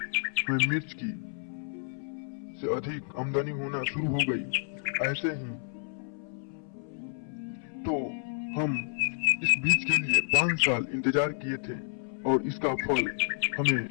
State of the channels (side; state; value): right; silent; 58 dB below the other